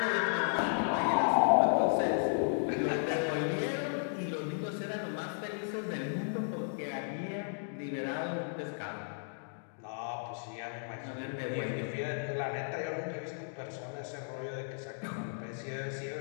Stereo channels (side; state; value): right; silent; digital silence